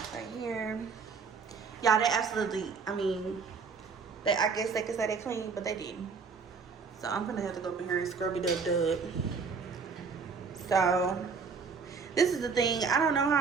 right here. Y'all, they absolutely, I mean, I guess they could say they clean, but they didn't. So I'm gonna have to go up in here and scrub it up. So this is the thing. I don't know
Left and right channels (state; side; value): quieter; left; 5.2 dB